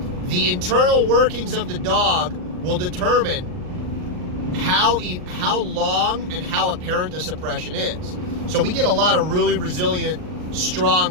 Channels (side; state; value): left; late; 39 ms